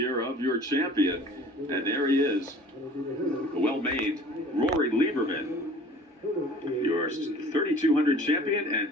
of your champion. And there he is, the well-made Rory Lieberman, your 3,200 champion,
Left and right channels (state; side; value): normal; both; correlation 0.47